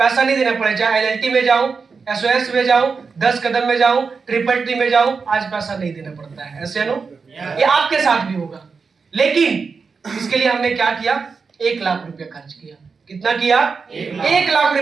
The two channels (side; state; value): left; quieter; 5.0 dB